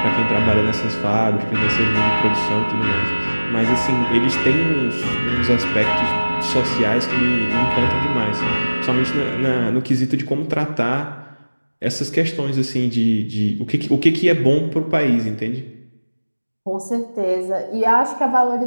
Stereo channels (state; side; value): inverted; both; correlation -1.00